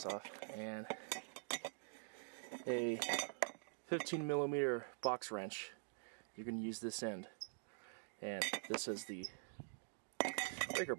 off, and a 15mm box wrench. You're going to use this end, and this is the breaker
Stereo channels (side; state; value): left; silent; digital silence